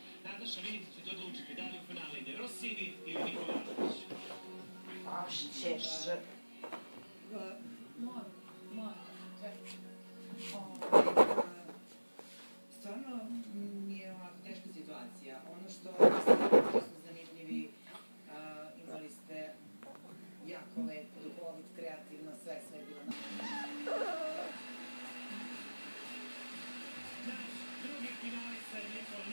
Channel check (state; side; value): inverted; both; correlation -1.00